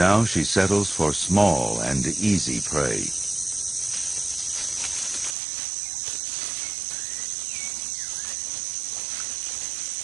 she settles for small and easy prey.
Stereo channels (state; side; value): drops out; left; at 5.4 s